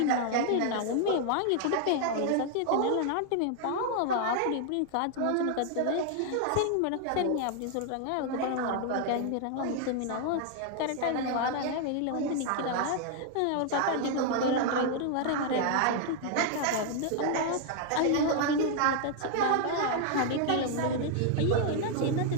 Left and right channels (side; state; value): both; different; correlation 0.00